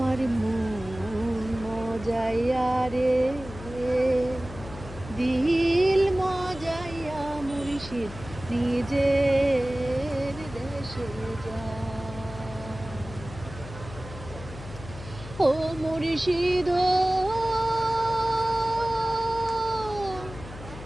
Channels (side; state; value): left; noise; hum, 14 dB below the sound